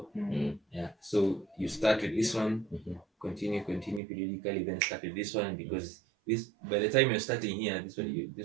Yeah. So you start with this one, continue periodically, then start with this one, because this, by the time you're starting here, this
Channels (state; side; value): drops out; left; at 4.0 s